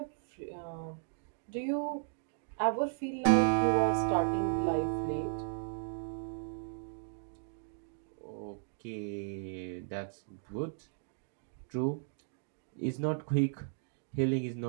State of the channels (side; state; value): left; silent; digital silence